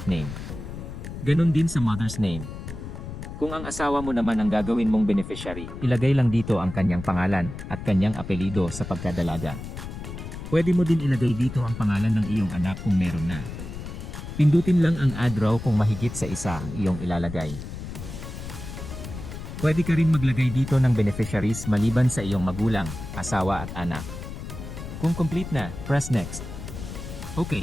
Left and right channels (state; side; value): noise; left; rumble, 9 dB below the sound